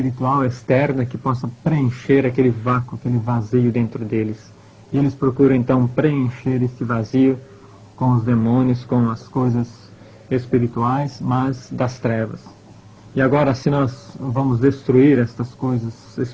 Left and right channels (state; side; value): identical; both; correlation 1.00